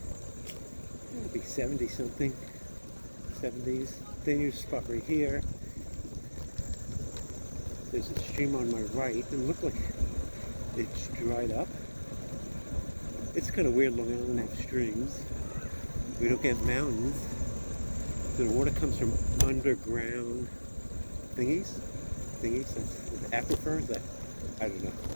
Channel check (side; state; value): both; inverted; correlation -1.00